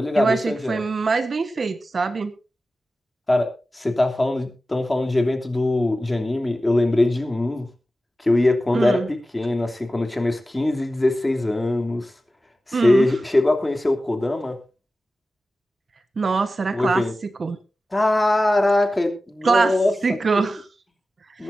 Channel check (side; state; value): both; normal; correlation 0.94